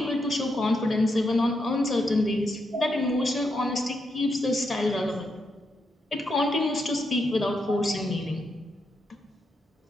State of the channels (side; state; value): both; normal; correlation 0.82